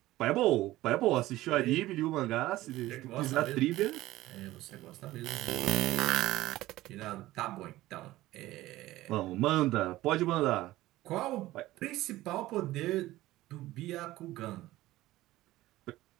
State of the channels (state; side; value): quieter; left; 16.7 dB